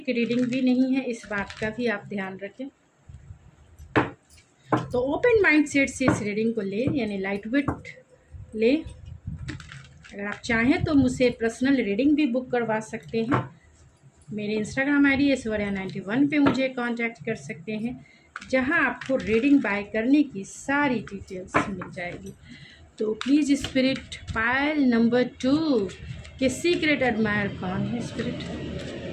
रीडिंग भी नहीं है, इस बात का भी आप ध्यान रखें। तो ओपन माइंड सेट से इस रीडिंग को ले, यानी लाइट वेट ले। अगर आप चाहें तो मुझसे पर्सनल रीडिंग भी बुक करवा सकते हैं। मेरे इंस्टाग्राम आईडी ऐश्वर्या91 पे मुझे कांटेक्ट कर सकते हैं, जहां आपको रीडिंग बाय करने की सारी डिटेल्स मिल जाएगी। तो प्लीज़ स्पिरिट, पायल नंबर 2 के सीक्रेट एडमायर कौन है? स्पिरिट,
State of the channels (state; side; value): identical; both; correlation 1.00